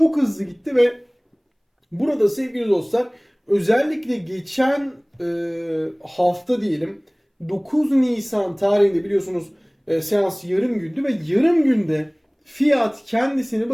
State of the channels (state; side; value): identical; both; correlation 1.00